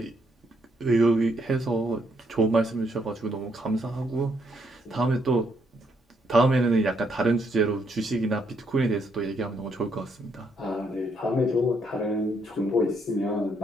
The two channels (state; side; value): normal; both; correlation 0.74